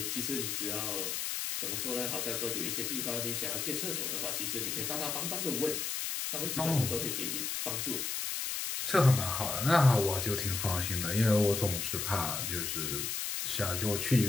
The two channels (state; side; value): noise; left; hiss, 2 dB below the sound